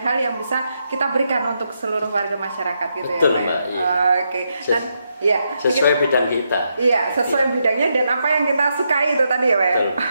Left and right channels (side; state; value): both; inverted; correlation -0.81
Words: hal yang bisa kita berikan untuk seluruh warga masyarakat gitu. Betul, ya Pak Mbak, ya. iya. Oke. Dan ya, Sesuai bidang kita. iya, sesuai bidangnya dan apa yang kita sukai itu tadi ya Pak ya. Betul.